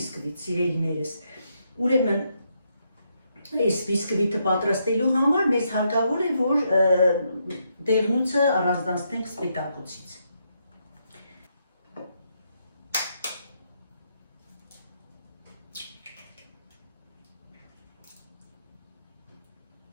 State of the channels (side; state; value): both; inverted; correlation -0.78